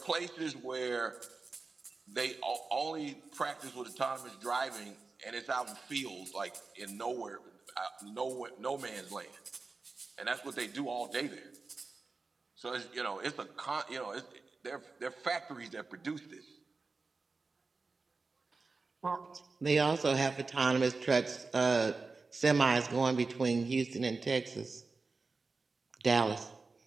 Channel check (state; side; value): quieter; left; 4.0 dB